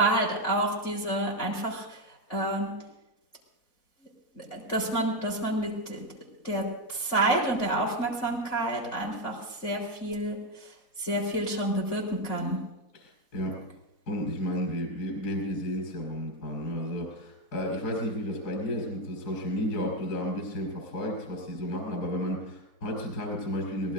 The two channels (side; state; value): right; late; 4.1 ms